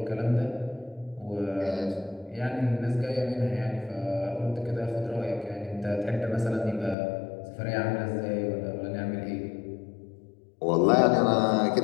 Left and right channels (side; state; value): right; drops out; at 7.0 s